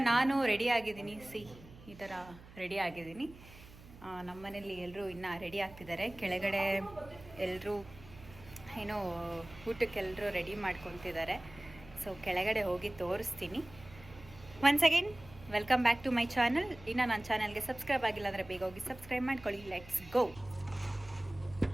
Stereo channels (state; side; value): noise; right; hum, 19 dB below the sound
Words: ನಾನು ರೆಡಿ ಆಗಿದ್ದೀನಿ, ಈ ಥರ ರೆಡಿ ಆಗಿದ್ದೀನಿ. ನಮ್ಮ ಮನೇಲಿ ಎಲ್ಲರೂ ಇನ್ನೂ ರೆಡಿ ಆಗ್ತಿದ್ದಾರೆ. ಕೆಳಗಡೆ ಎಲ್ಲರೂ ಏನೋ ಊಟಕ್ಕೆಲ್ಲರೂ ರೆಡಿ ಮಾಡ್ಕೊತಿದ್ದಾರೆ. ಸೊ ಕೆಳಗಡೆ ಹೋಗಿ ತೋರಿಸ್ತೀನಿ. Once again welcome back to my channel. ಇನ್ನು ನನ್ನ ಚಾನಲ್ಗೆ ಸಬ್ಸ್ಕ್ರೈಬ್ ಆಗಿಲ್ಲ ಅಂದರೆ ಬೇಗ ಹೋಗಿ ಸಬ್ಸ್ಕ್ರೈಬ್ ಮಾಡ್ಕೊಳ್ಳಿ. Let's go.